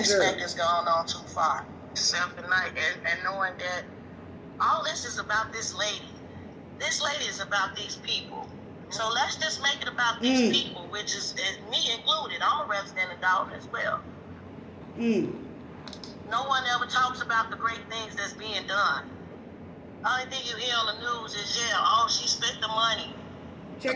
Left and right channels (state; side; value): identical; both; correlation 1.00